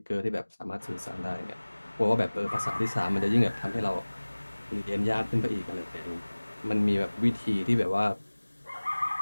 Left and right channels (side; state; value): both; inverted; correlation -1.00